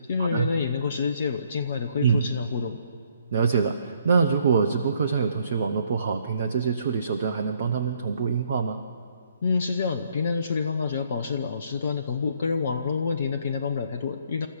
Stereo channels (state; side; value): inverted; both; correlation -0.66